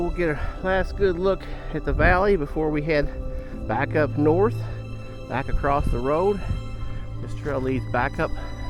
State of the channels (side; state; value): both; identical; correlation 1.00